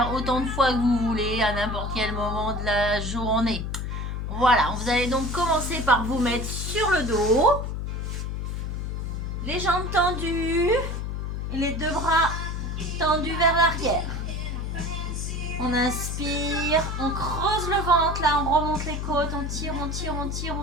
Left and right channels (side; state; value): left; noise; hum, 3 dB below the sound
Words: autant de fois que vous voulez à n'importe quel moment de la journée. Voilà, vous allez donc commencer par vous mettre sur le dos, les jambes tendues et les deux bras tendus vers l'arrière. On inspire, on creuse le ventre, là on remonte les côtes, on tire, on tire, on tire,